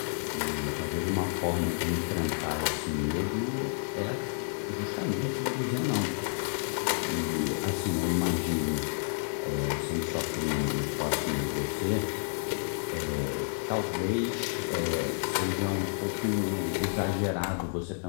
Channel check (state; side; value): silent; right; digital silence